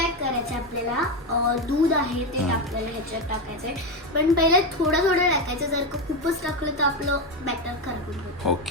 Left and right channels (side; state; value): both; normal; correlation 0.12